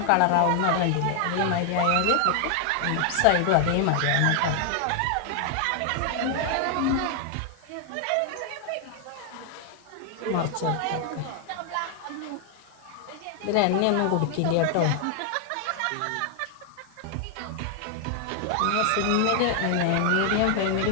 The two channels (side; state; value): both; different; correlation 0.00